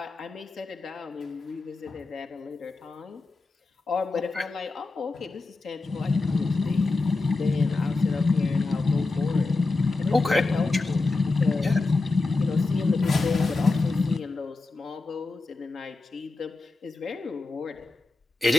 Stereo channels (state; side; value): quieter; right; 3.6 dB